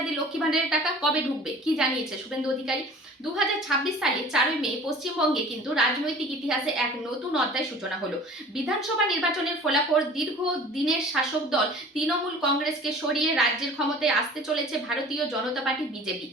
লক্ষ্মী ভান্ডারের টাকা, কবে ঢুকবে কি জানিয়েছে শুভেন্দু অধিকারী? 2026 সালে 4 মে পশ্চিমবঙ্গে কিন্তু রাজনৈতিক ইতিহাসে এক নতুন অধ্যায় সূচনা হলো। বিধানসভা নির্বাচনের ফলাফল, দীর্ঘ দিনের শাসক দল তৃণমূল কংগ্রেসকে সরিয়ে রাজ্যের ক্ষমতায় আসতে চলেছে ভারতীয় জনতা পার্টি বিজেপি।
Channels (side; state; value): both; normal; correlation 0.45